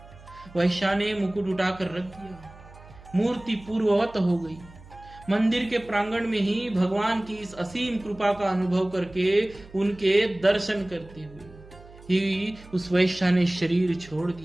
वैश्या ने मुकुट उठाकर रख दिया। मूर्ति पूर्ववत हो गई। मंदिर के प्रांगण में ही भगवान की इस असीम कृपा का अनुभव करके उनके दर्शन करते हुए ही उस वैश्या ने शरीर छोड़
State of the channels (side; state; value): right; noise; hum, 21 dB below the sound